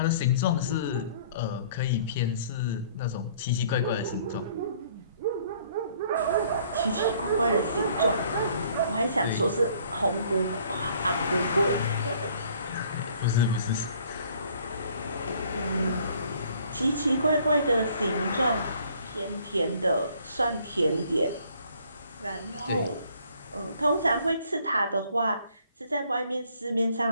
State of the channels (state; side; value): inverted; both; correlation -0.59